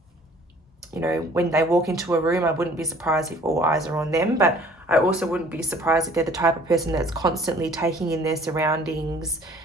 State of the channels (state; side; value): normal; both; correlation 0.54